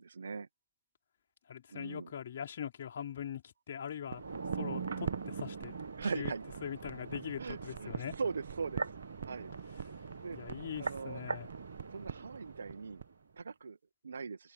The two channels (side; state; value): both; inverted; correlation -0.74